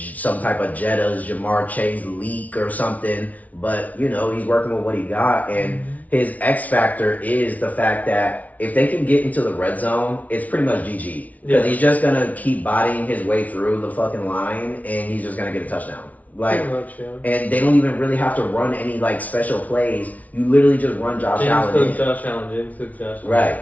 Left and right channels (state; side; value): late; right; 0.072 ms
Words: type of Jetta's Jamar Chase leak or something. But, he's working with what he got. And his X factor is the fact that if they can get into the red zone, it's pretty much GG. Because he's just going to keep bodying his way through the fucking line and he's just going to get a touchdown. And they don't even really have to run any special plays. You literally just run Josh Allen. Josh Allen. Right,